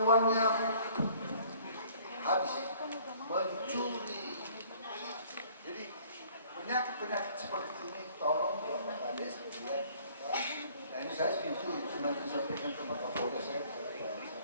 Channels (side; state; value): both; inverted; correlation -0.56